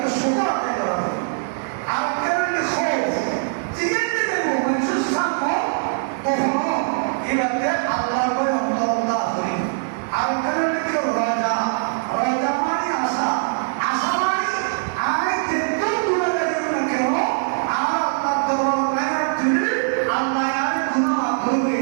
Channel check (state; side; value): silent; left; digital silence